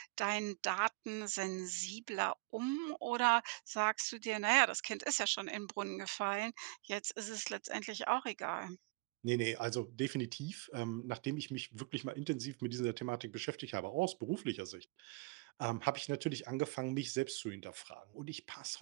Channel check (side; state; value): left; quieter; 26.5 dB